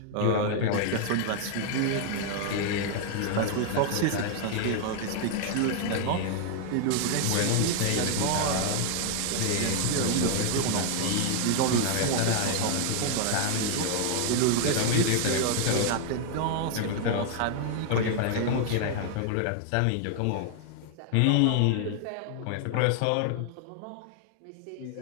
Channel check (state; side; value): different; both; correlation 0.00